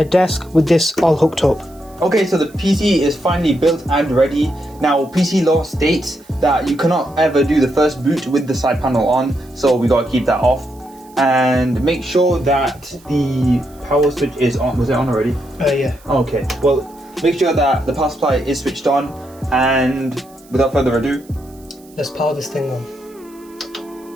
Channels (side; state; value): right; noise; hiss, 27 dB below the sound